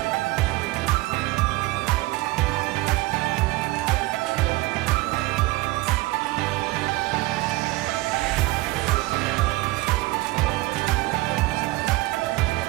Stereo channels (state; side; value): quieter; left; 20.2 dB